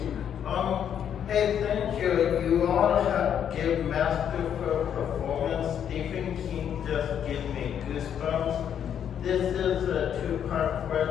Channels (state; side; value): quieter; right; 8.9 dB